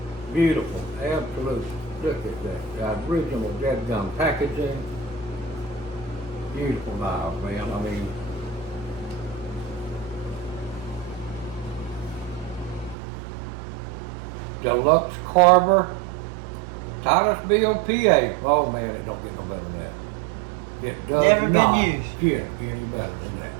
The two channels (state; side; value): drops out; left; at 13.0 s